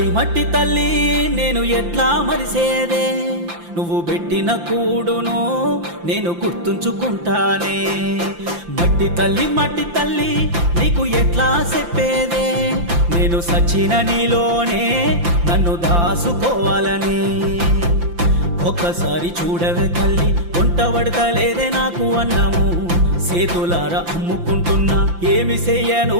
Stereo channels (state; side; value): late; left; 5.8 ms